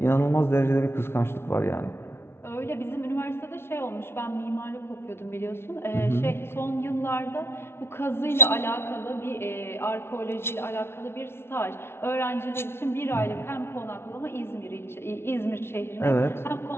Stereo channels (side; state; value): right; late; 0.12 ms